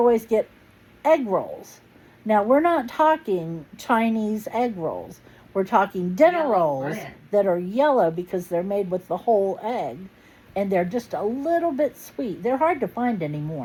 get egg rolls. Now, we're not talking Chinese egg rolls. We're talking dinner Yellow rolls bread. that are yellow because they're made with the whole egg. And they're just a little bit sweet. They're hard to find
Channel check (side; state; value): both; identical; correlation 1.00